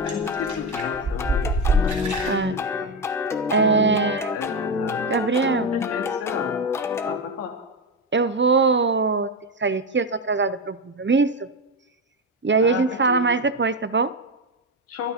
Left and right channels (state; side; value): normal; both; correlation 0.12